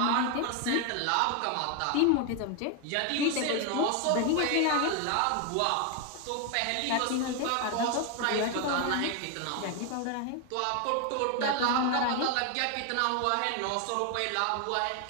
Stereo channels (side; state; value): both; different; correlation 0.01